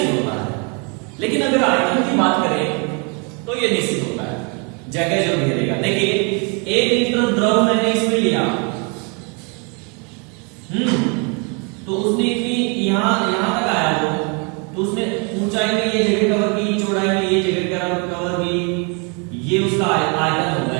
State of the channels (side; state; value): left; quieter; 34.5 dB